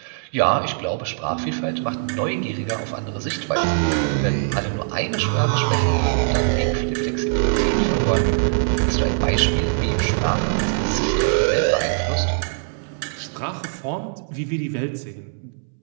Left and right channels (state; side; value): silent; left; 64 dB below the other